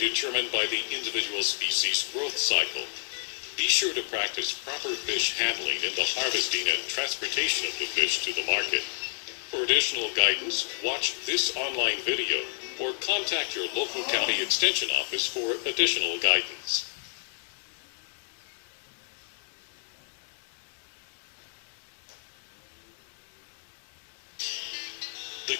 by the individual species' growth cycle. Be sure to practice proper fish handling in the harvesting and transportation of the fish to the market. For additional guidance, watch this online video or contact your local county extension office for additional guidance. The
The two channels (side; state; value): right; silent; digital silence